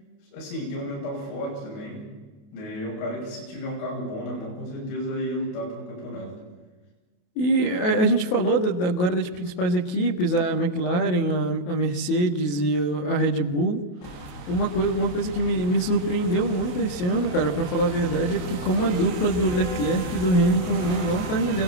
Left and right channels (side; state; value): right; late; 28 ms